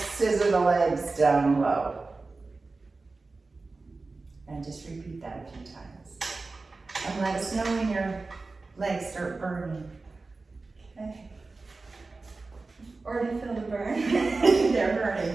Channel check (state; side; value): quieter; left; 3.7 dB